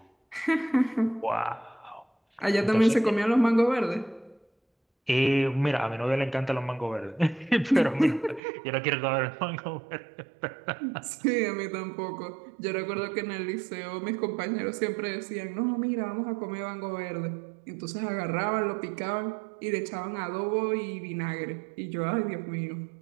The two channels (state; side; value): drops out; left; at 8.4 s